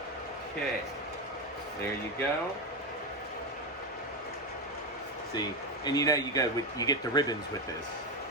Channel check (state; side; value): normal; both; correlation 0.12